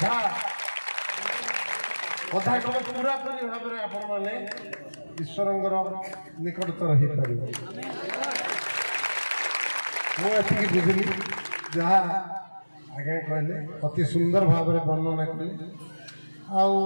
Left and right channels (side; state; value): both; inverted; correlation -1.00